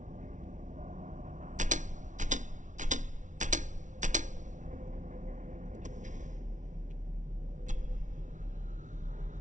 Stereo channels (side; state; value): left; late; 0.37 ms